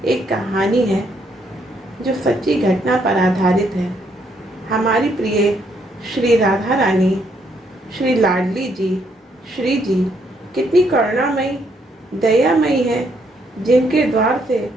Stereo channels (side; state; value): both; normal; correlation 0.72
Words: एक कहानी है जो सच्ची घटना पर आधारित है। हमारी प्रिय श्री राधा रानी, श्री लाडली जी, श्री जी कितनी करुणामयी, दयामयी है, जिनके द्वार से